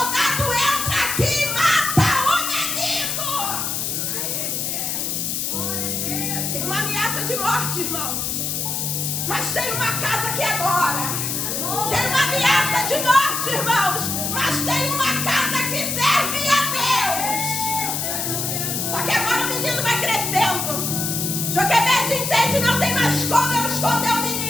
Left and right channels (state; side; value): noise; left; hiss, 1 dB below the sound